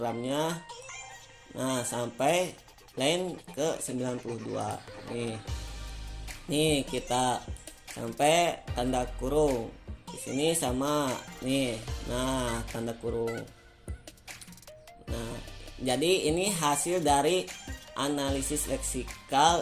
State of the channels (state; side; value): identical; both; correlation 1.00